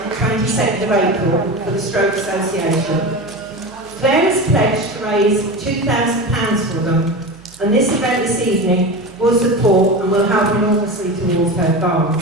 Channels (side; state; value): right; noise; hum, 26 dB below the sound